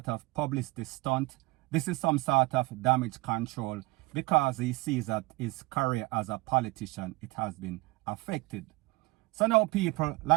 of publicity stunt. This is some sort of damage control because he sees that his career as a politician, it has been affected. So now people,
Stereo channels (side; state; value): left; quieter; 23.2 dB